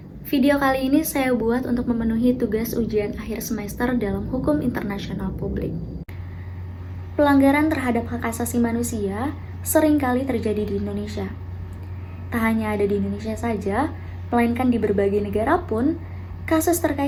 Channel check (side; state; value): both; identical; correlation 1.00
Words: Video kali ini saya buat untuk memenuhi tugas ujian akhir semester dalam hukum internasional publik. Pelanggaran terhadap hak asasi manusia seringkali terjadi di Indonesia. Tak hanya ada di Indonesia saja, melainkan di berbagai negara pun, kasus